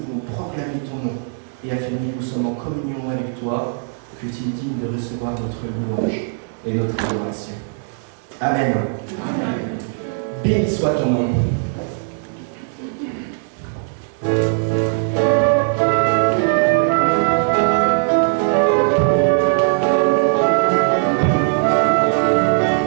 voulons proclamer ton nom et affirmer que nous sommes en communion avec toi, que tu es digne de recevoir notre louange et notre adoration. Amen. Amen. Béni soit ton nom.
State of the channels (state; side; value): silent; left; digital silence